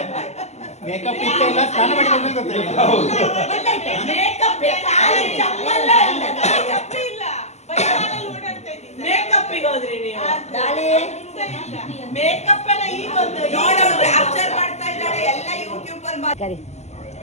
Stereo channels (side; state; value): right; late; 0.33 ms